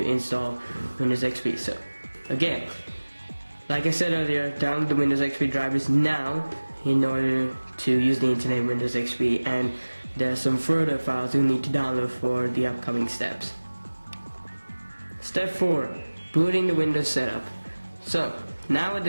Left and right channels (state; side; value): inverted; both; correlation -1.00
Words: install Windows XP. So again, like I said earlier, download the Windows XP drivers now in order to use the internet in Windows XP, and there are some further files you need to download for the upcoming steps. Step 4, booting the Windows setup. So now at